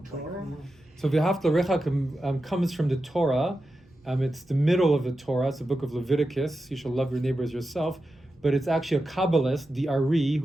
Torah? So V'ahavta l'recha comes from the Torah. It's the middle of the Torah. It's the book of Leviticus. You shall love your neighbor as yourself. But it's actually a Kabbalist, the Ari,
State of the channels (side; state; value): both; normal; correlation 0.91